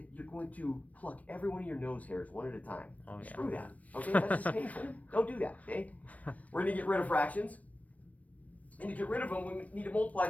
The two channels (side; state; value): right; late; 0.069 ms